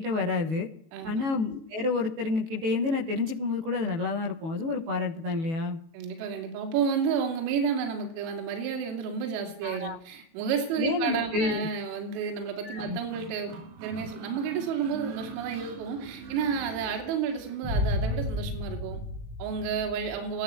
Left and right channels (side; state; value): left; late; 18 ms